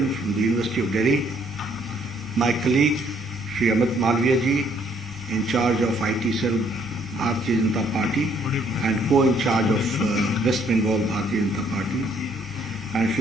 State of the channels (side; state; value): both; normal; correlation 0.66